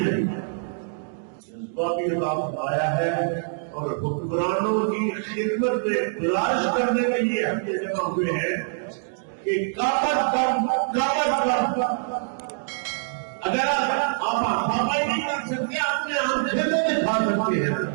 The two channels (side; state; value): left; silent; digital silence